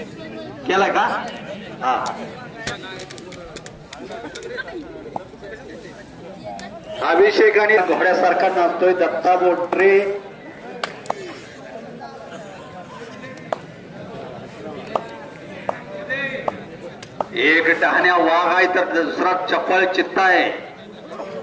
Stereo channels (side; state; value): both; identical; correlation 1.00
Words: केला का? हा अभिषेक आणि घोड्यासारखा नाचतोय दत्ता बोट्रे. एक डहाण्या वाघ आहे तर दुसरा चपळ चित्ता आहे.